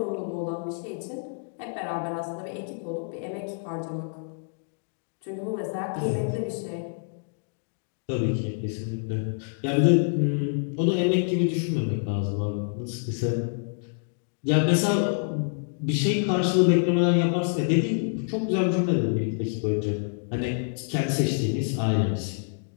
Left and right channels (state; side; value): silent; right; digital silence